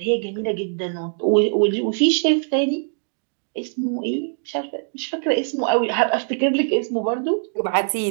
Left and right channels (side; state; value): left; silent; digital silence